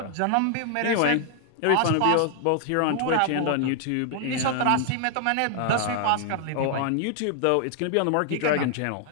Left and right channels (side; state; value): both; different; correlation 0.00